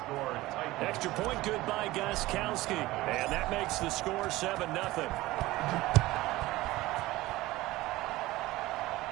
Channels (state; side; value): quieter; left; 18.3 dB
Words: Extra point good by Gostkowski. And that makes the score 7-0.